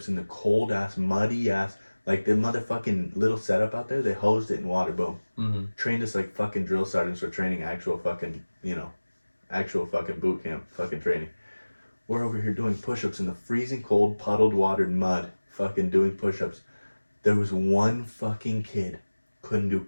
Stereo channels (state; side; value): inverted; both; correlation -1.00